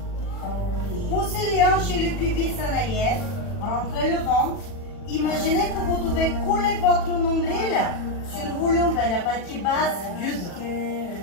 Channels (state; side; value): late; right; 40 ms